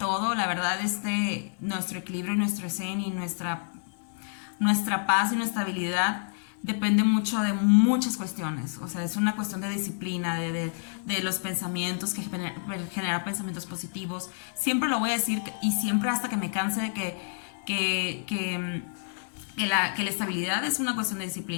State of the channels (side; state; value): right; silent; 59 dB below the other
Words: la verdad, nuestro equilibrio y nuestro zen y nuestra paz y nuestra estabilidad depende mucho de muchas cuestiones. O sea, es una cuestión de disciplina, de los pensamientos, que genera pensamientos positivos. Siempre lo voy a decir y siempre hasta que me canse de que la estabilidad es una cuestión de